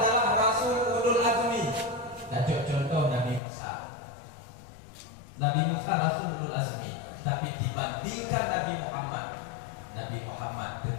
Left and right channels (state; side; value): drops out; right; at 3.4 s